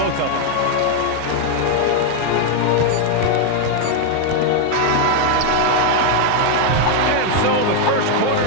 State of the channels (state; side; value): different; both; correlation 0.01